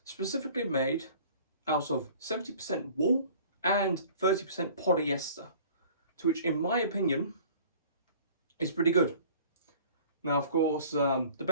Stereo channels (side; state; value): both; inverted; correlation -0.48